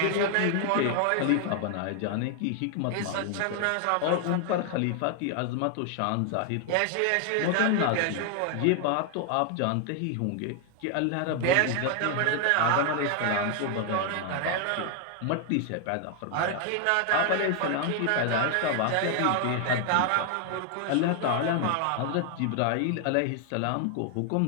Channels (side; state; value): both; different; correlation 0.00